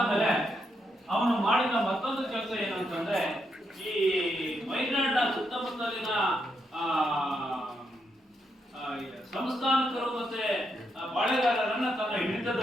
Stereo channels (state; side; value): normal; both; correlation 0.80